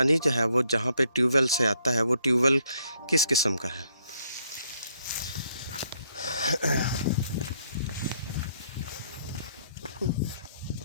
जो है वो जहाँ पे ट्यूबवेल से आता है, वो ट्यूबवेल किस किस्म का है।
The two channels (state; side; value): inverted; both; correlation -0.70